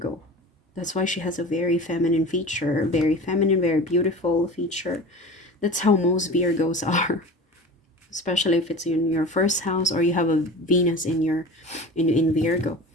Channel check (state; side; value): normal; both; correlation 0.35